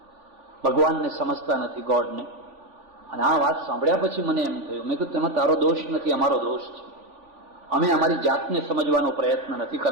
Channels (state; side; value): late; left; 3.5 ms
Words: ભગવાનને સમજતા નથી, ગોડને. અને આ વાત સાંભળ્યા પછી મને એમ થયું, મેં કીધું તેમાં તારો દોષ નથી, અમારો દોષ છે. અમે અમારી જાતને સમજવાનો પ્રયત્ન નથી